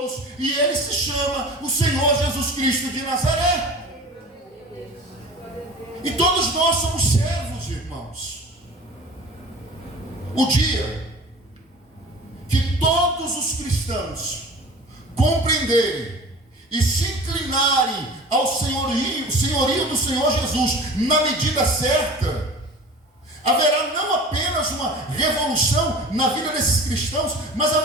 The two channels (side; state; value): both; normal; correlation 0.40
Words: e Ele se chama o Senhor Jesus Cristo de Nazaré. E todos nós somos servos, irmãos. O dia que todos os cristãos compreenderem e se inclinarem ao senhorio do Senhor Jesus na medida certa, haverá não apenas uma revolução na vida desses cristãos, mas